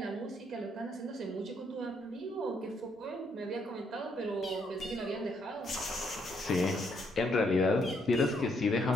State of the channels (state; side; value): normal; both; correlation 0.73